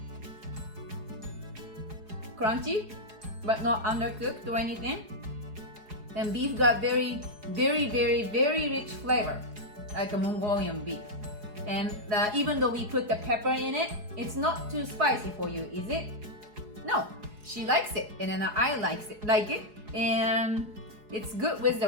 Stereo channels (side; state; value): left; late; 4.8 ms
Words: crunchy, but not undercooked or anything. And beef got very rich flavor, like a Mongolian beef. And even though we put the pepper in it, it's not too spicy for you, is it? No, she likes it, and then I like it, and it's good with the